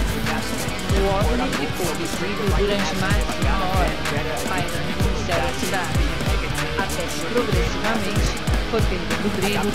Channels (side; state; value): both; identical; correlation 1.00